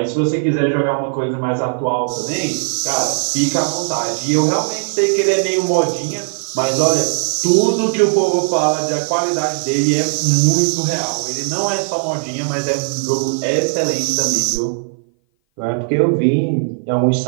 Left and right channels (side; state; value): left; silent; 58 dB below the other